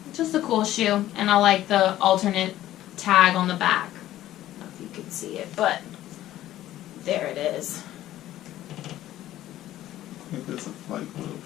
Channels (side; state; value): right; quieter; 13.8 dB